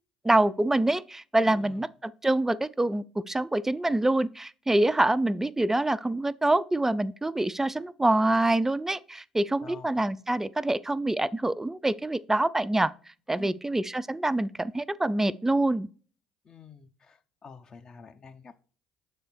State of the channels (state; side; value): normal; both; correlation 0.97